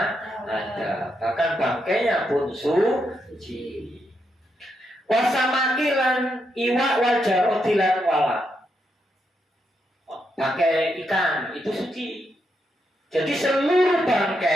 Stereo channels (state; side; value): normal; both; correlation 0.81